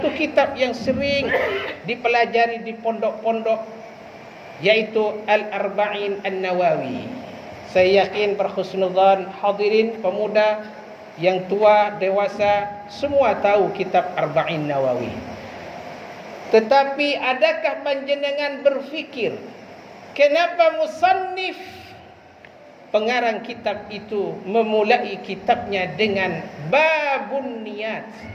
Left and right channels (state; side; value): identical; both; correlation 1.00